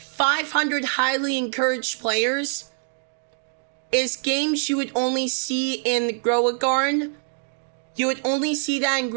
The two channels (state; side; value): silent; left; digital silence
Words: 500 highly encouraged players is games you would only see in Grow a Garden. You would only see that in